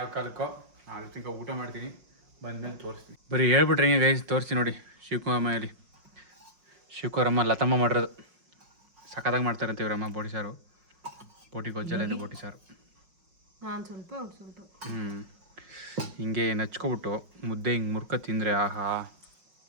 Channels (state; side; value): late; left; 5.5 ms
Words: ಕಾಲಕ್ಕೋ ಅದು ತಿನ್ಕೊ ಊಟ ಮಾಡ್ತೀನಿ, ಬಂದ್ಮೇಲೆ ತೋರಿಸ್ತೀನಿ. ಬರೀ ಹೇಳ್ಬಿಟ್ರೆ ಹೆಂಗೆ ಗೈಸ್, ತೋರಿಸ್ತೀನಿ ನೋಡಿ. ಶಿವಕುಮಾರಲ್ಲಿ ಶಿವಕುಮಾರಮ್ಮ ಲತಮ್ಮ ಮಾಡಿರೋದು ಸಖತ್ತಾಗಿ ಮಾಡ್ತಾರಂತೆ ಇವರಮ್ಮ. ಬೋಟಿ ಸಾರು, ಬೋಟಿ ಗೊಜ್ಜೆಲ್ಲ ಇದೆ, ಬೋಟಿ ಸಾರು. ನಾನು ಸ್ವಲ್ಪ ಹಿಂಗೆ ನಚ್ಕೊಬಿಟ್ಟು ಮುದ್ದೆ ಹಿಂಗೆ ಮುರ್ಕ ತಿಂದರೆ ಆಹಾ